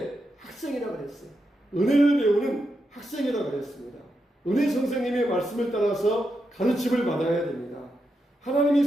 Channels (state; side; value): normal; both; correlation 0.85